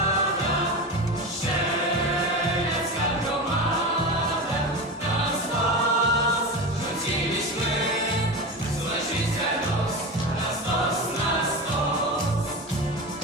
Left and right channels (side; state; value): both; normal; correlation 0.24